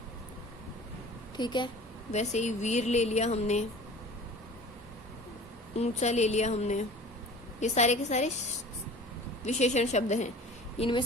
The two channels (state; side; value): normal; both; correlation 0.42